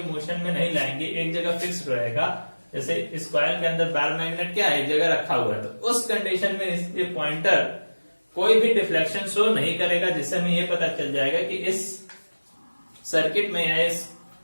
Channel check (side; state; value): both; inverted; correlation -1.00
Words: मोशन में नहीं लाएंगे, एक जगह फिक्स रहेगा। जैसे इस कॉइल के अंदर बार मैग्नेट क्या है, एक जगह रखा हुआ है, तो उस कंडीशन में इसके पॉइंटर कोई भी डिफ्लेक्शन शो नहीं करेगा, जिससे हमें ये पता चल जाएगा कि इस सर्किट में या इस